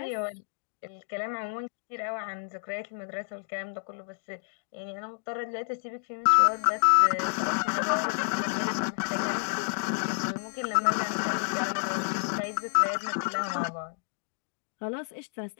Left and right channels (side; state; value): right; silent; digital silence